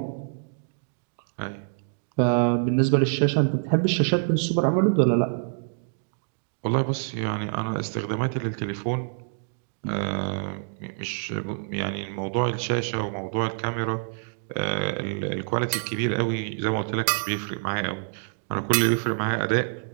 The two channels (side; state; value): left; silent; digital silence